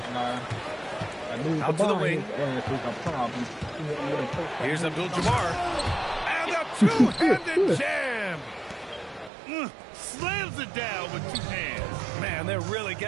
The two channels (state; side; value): drops out; left; at 9.3 s